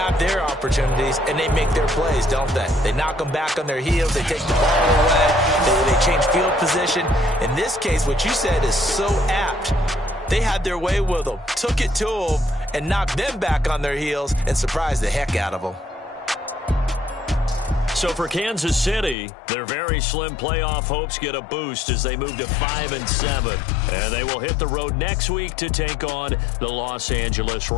their opportunities, and they make their plays, don't they? They knock them back on their heels. They take the ball away. They change field position. In this case, what you said is so apt. They had their way with them, took it to them, and knocked them back on their heels and surprised the heck out of them. So for Kansas City, their very slim playoff hopes get a boost as they move to 5-7. And they will hit the road next week to take on the Los Angeles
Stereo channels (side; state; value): right; drops out; at 19.2 s